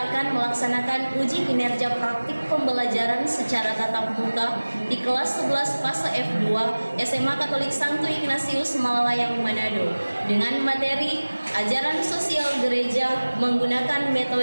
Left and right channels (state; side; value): inverted; both; correlation -1.00